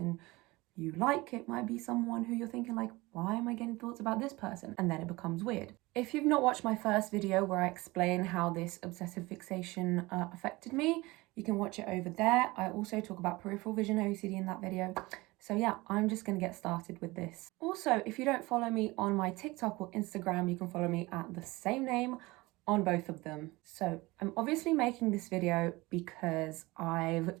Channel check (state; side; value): quieter; left; 21.7 dB